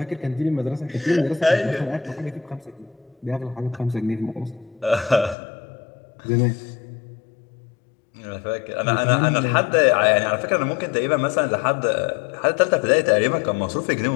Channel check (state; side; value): drops out; right; at 5.4 s